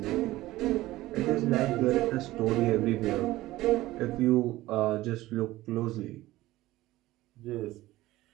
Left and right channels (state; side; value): quieter; left; 17.1 dB